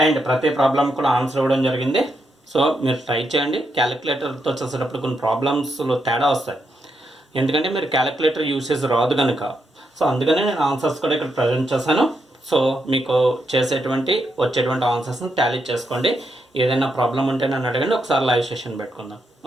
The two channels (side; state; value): both; normal; correlation 0.81